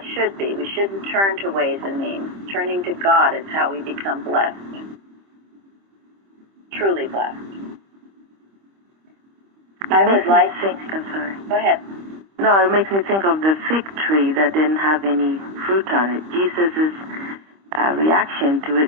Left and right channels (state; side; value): late; left; 25 ms